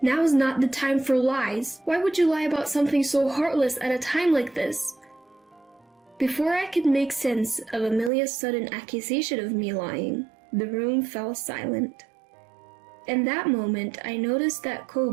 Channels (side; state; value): left; drops out; at 8.1 s